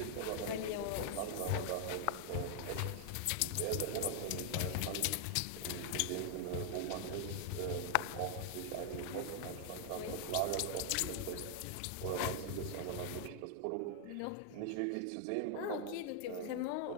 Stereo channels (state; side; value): different; both; correlation 0.00